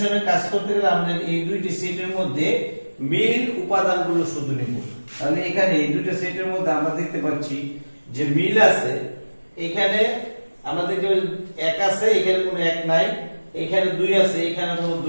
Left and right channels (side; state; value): both; inverted; correlation -1.00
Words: কাজ করতে গেলে আমাদের এই দুইটি সেটের মধ্যে মিল উপাদানগুলো শুধু নেব। তাহলে এখানে এই দুটো সেটের মধ্যে আমরা দেখতে পাচ্ছি যে মিল আছে। এখানে আমরা দেখতে পাচ্ছি 1 আছে, এখানে কোনো 1 নাই, এখানে 2 আছে, এখানে কোনো